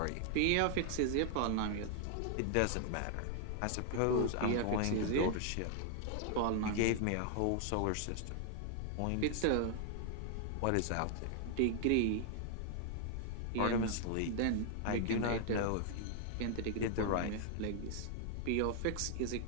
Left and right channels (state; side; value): different; both; correlation 0.00